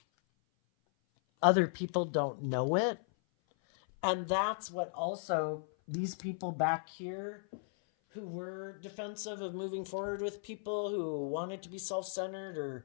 other people don't know it. And that's what also these people back here who were defensive of moving forward with people who wanted to be self-centered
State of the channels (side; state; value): right; silent; 54 dB below the other